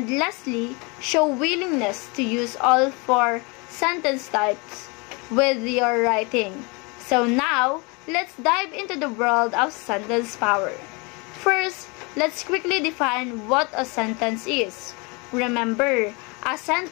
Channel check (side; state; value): right; quieter; 29.2 dB